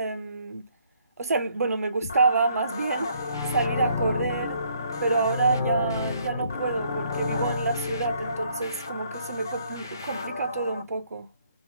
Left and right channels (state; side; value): inverted; both; correlation -0.66